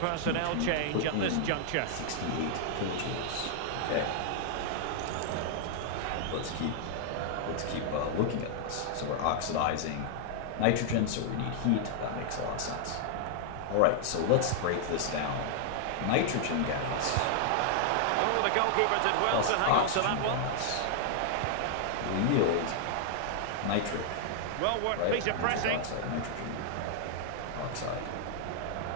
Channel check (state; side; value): different; both; correlation 0.00